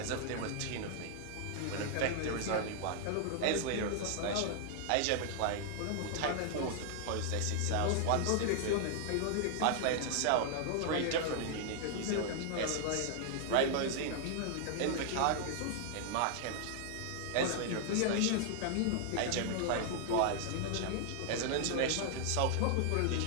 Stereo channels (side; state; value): both; different; correlation 0.00